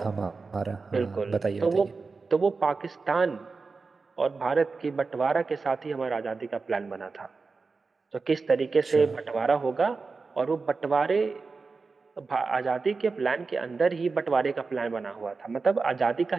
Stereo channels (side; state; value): left; quieter; 4.3 dB